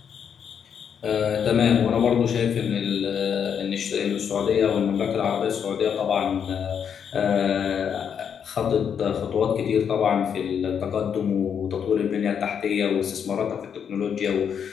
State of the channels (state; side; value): quieter; right; 7.7 dB